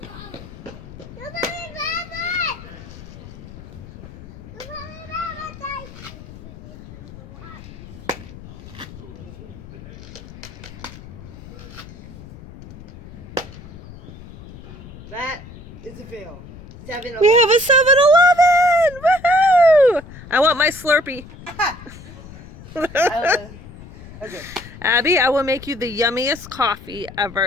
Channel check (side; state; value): left; noise; rumble, 17 dB below the sound